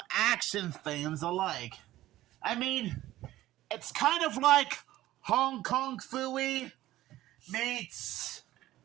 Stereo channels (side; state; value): left; quieter; 15.2 dB